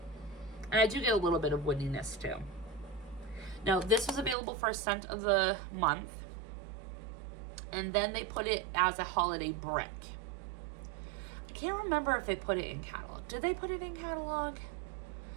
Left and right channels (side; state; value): left; drops out; at 4.4 s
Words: And I do get a little bit of woodiness too. Now, this was available for a scent of the month. And then they put it as a holiday brick. I can't remember if they put it in catalog. Did they put it in catalog?